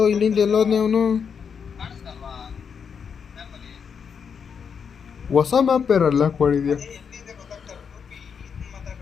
ಇಲ್ಲಿಂದ ಎಲ್ಲೋದ್ನೇ ಅವನು? ಹೊಸ ಮ್ಯಾಪ್ ಬೇರಲ್ಲ ಕೊಡಿದ್ಯಾ?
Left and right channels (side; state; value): right; quieter; 6.7 dB